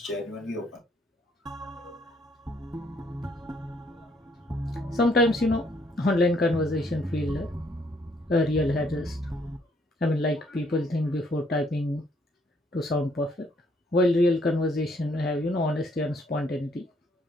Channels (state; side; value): normal; both; correlation 0.67